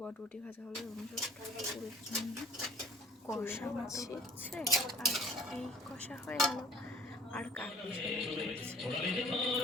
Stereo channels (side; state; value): both; normal; correlation 0.49